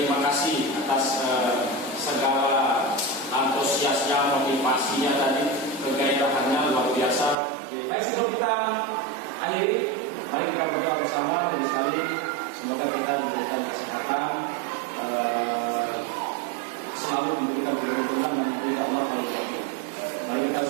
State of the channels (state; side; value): drops out; left; at 7.4 s